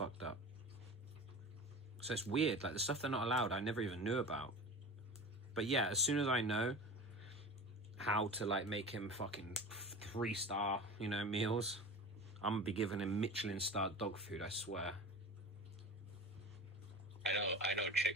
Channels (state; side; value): normal; both; correlation 0.33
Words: up. So it's weird. Like, the stuff they're not allowed, I never even knew about. But yeah, as soon as I know how to, like, make him fucking 3-star, you know, meals, I'm gonna be giving him Michelin-starred dog food, I swear. I know